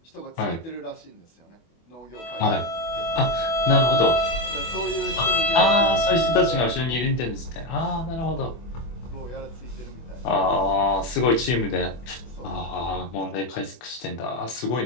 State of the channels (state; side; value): late; right; 24 ms